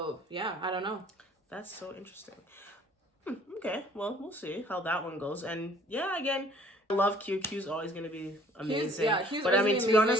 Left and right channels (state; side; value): normal; both; correlation 0.56